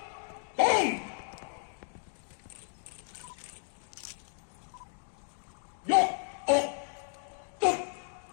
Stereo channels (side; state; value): right; silent; 55 dB below the other